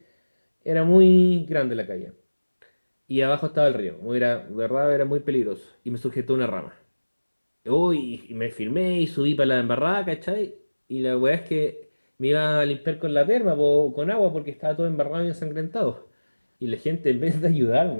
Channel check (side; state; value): both; inverted; correlation -1.00